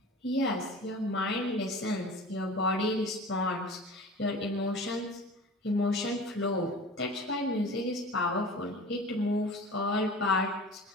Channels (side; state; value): both; normal; correlation 0.38